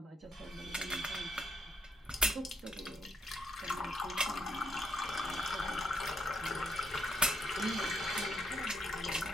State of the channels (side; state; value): both; normal; correlation 0.76